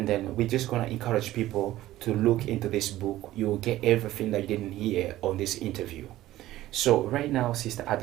then we're just going to encourage people to look into this book. You will get everything that you didn't hear on this interview. So right now, Sister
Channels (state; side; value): quieter; left; 15.2 dB